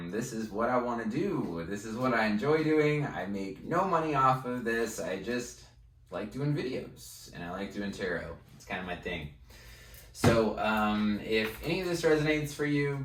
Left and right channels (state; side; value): identical; both; correlation 1.00